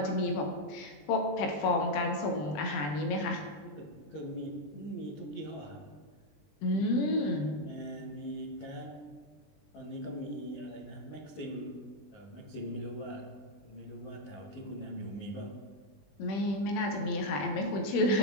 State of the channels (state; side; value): late; right; 20 ms